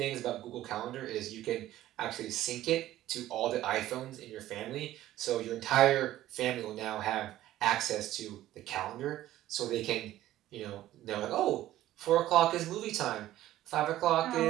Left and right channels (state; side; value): quieter; left; 14.2 dB